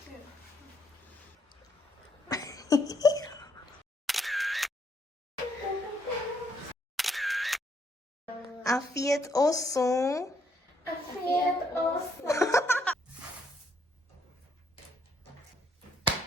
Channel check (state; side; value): normal; both; correlation 0.71